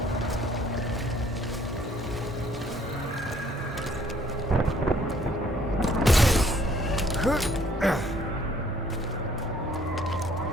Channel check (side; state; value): both; normal; correlation 0.62